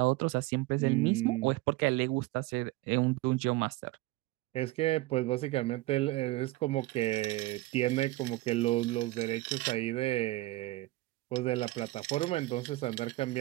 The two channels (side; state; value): left; quieter; 19.1 dB